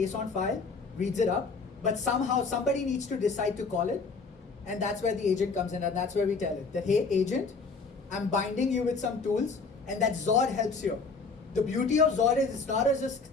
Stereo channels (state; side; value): quieter; right; 4.4 dB